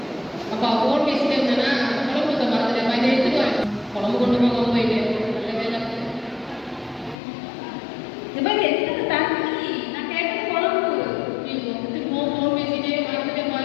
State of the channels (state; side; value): drops out; right; at 7.2 s